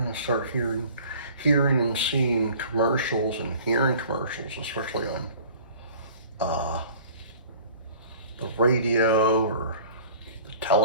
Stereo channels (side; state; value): both; inverted; correlation -0.47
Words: to start hearing and seeing commercials and hearing commercials, especially on the radio or the